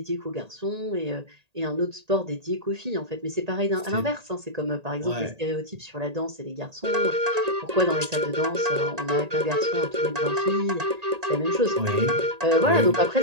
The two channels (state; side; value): late; left; 1.8 ms